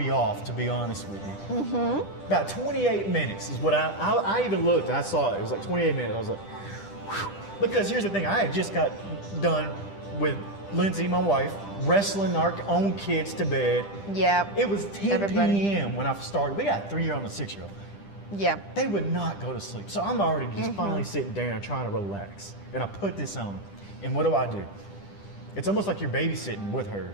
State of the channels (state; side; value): late; right; 10 ms